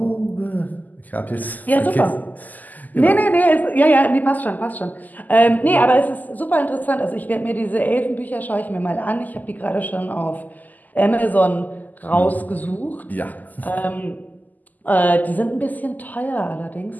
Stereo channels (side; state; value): right; late; 0.082 ms